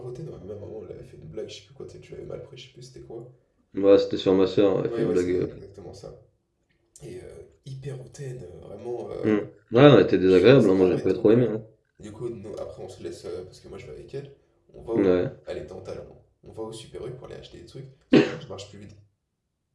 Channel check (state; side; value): identical; both; correlation 1.00